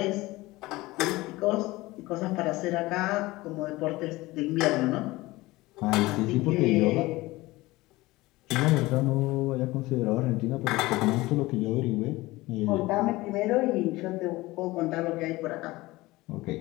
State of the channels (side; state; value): right; quieter; 19.9 dB